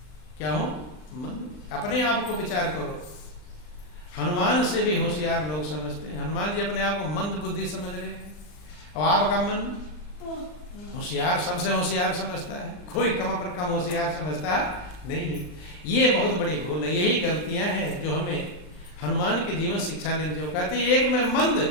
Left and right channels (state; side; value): late; right; 39 ms